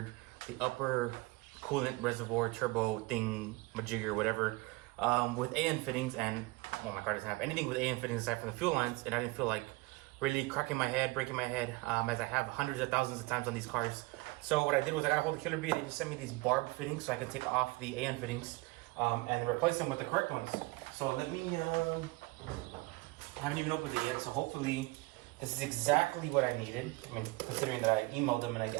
the upper coolant reservoir turbo thing, majigger, whatever, with AN fittings, and well, my car doesn't have anything with AN fittings aside from the fuel lines, and I didn't feel like really cracking my head, breaking my head, as I have hundreds of thousands of times on these cars. So what I did was I got a hold of Killer Bee. They just sent me these barbed fittings so I can take off the AN fittings and replace them with the correct ones. So let me, I haven't even opened it yet, so hopefully this is exactly what I needed. I mean, considering that I emailed them and I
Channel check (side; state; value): left; quieter; 23.6 dB